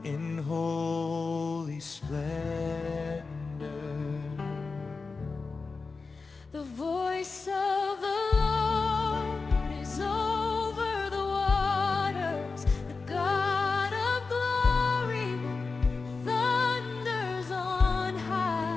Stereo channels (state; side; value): quieter; right; 4.3 dB